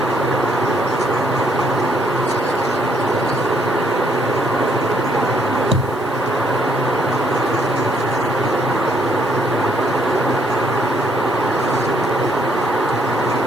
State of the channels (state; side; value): noise; right; hiss, 25 dB below the sound